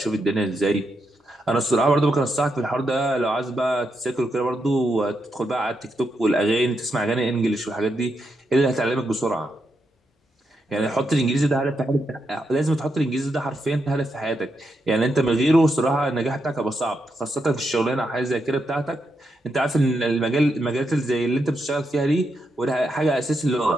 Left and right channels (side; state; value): both; normal; correlation 0.83